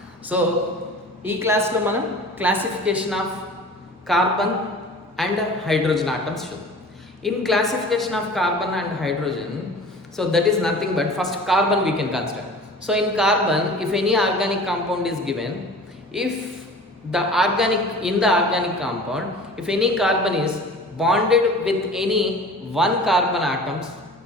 So, ఈ క్లాస్లో మనం classification of carbon and hydrogen atoms చూద్దాం. In classification of carbon and hydrogen, so that is nothing but first carbon we can consider. So in carbon, if any organic compound is given, if the organic compound, if any carbon is bonded with any one carbon atoms,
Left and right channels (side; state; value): both; normal; correlation 0.41